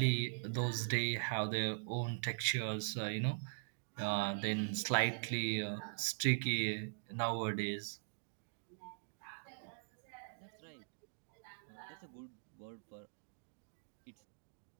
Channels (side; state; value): left; silent; digital silence